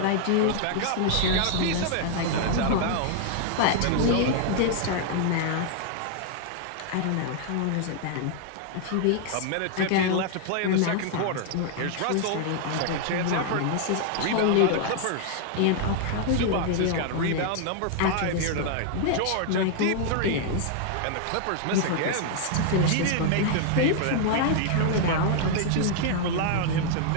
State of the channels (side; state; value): both; different; correlation 0.00